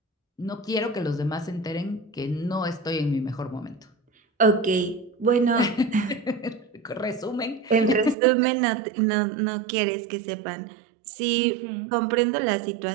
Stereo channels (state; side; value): drops out; left; at 8.2 s